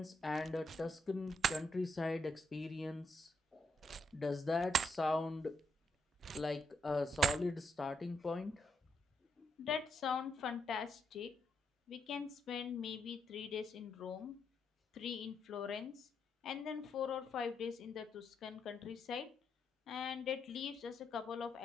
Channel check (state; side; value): normal; both; correlation 0.78